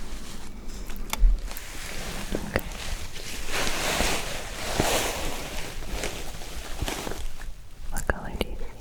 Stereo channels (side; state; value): both; identical; correlation 1.00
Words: Okay. What color do you see?